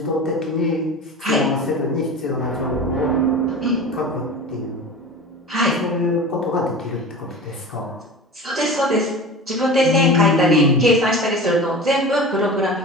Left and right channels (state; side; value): normal; both; correlation 0.34